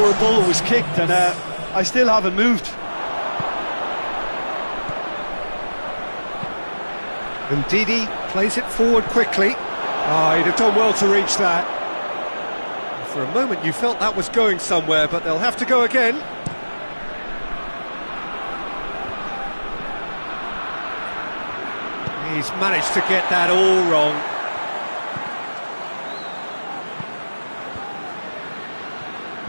a ball was kicked, and I still haven't moved. Ndidi plays it forward quickly. Oh, he'd have done well to reach that. For a moment you felt that was going somewhere, but they'll have to go again. He's managed to get that all wrong.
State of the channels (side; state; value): both; inverted; correlation -1.00